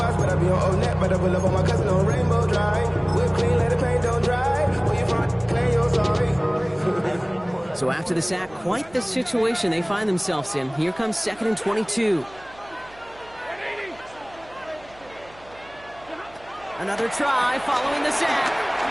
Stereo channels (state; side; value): noise; right; hum, 25 dB below the sound